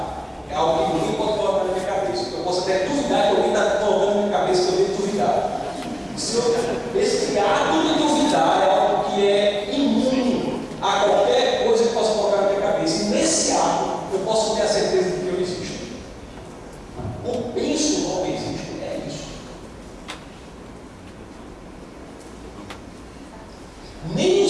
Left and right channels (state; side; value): identical; both; correlation 1.00